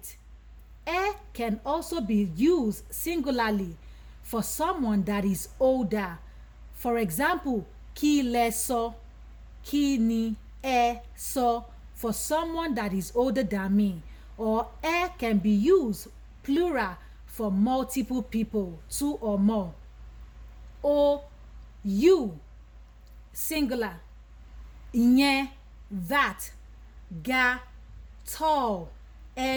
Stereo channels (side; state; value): both; identical; correlation 1.00